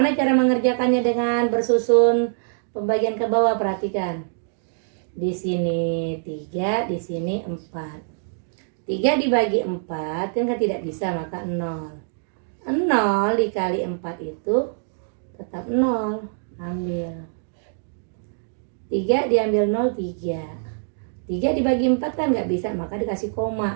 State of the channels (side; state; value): left; silent; digital silence